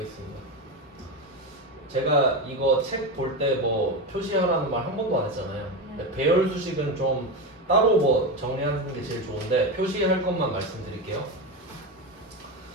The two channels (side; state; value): both; normal; correlation 0.17